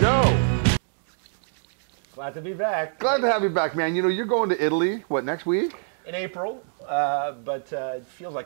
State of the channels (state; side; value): silent; left; digital silence